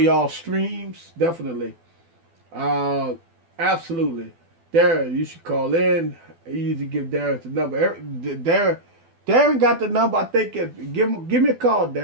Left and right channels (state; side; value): late; left; 12 ms